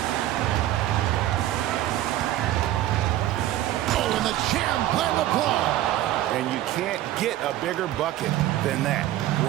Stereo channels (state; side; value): quieter; left; 13.9 dB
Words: Oh, and the jam by LeBron. And you can't get a bigger bucket than that.